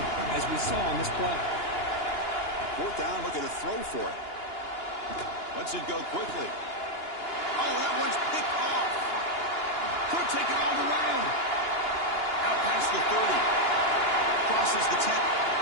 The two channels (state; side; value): late; right; 2.9 ms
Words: as we saw on this play. 4th down, looking to throw for it. Lets it go quickly. Oh, that one's picked off. Could take it all the way. Out past the 30. Crosses the 10.